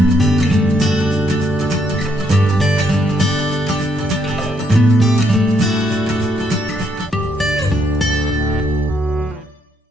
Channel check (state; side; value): normal; both; correlation 0.73